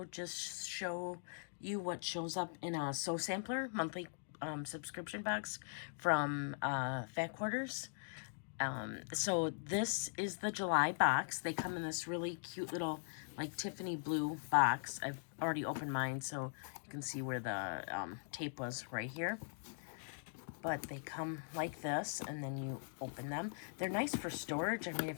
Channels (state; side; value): silent; right; digital silence